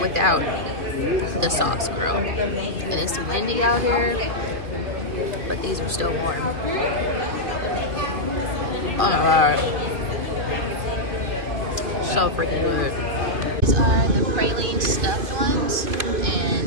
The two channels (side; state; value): left; late; 2.5 ms